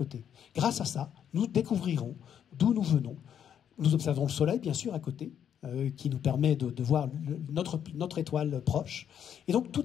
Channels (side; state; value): right; quieter; 9.0 dB